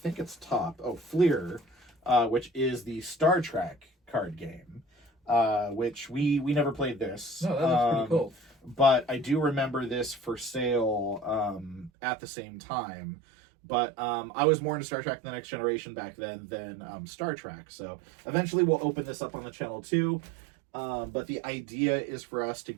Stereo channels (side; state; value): left; drops out; at 11.9 s